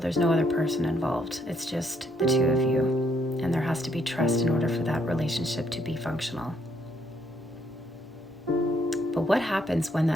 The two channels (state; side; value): normal; both; correlation 0.70